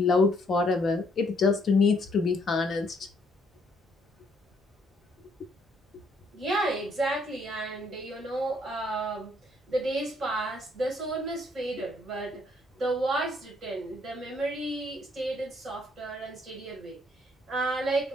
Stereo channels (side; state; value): both; normal; correlation 0.68